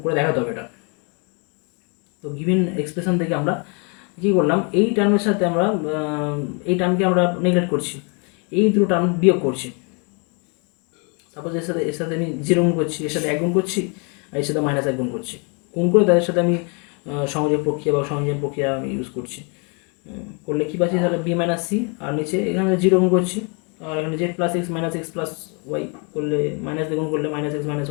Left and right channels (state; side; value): quieter; right; 35.1 dB